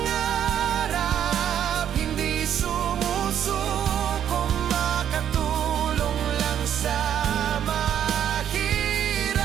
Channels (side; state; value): left; quieter; 9.7 dB